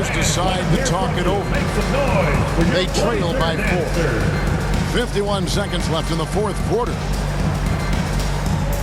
decide to talk it over. They trail by 4. 51 seconds left in the fourth quarter.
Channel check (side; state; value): both; identical; correlation 1.00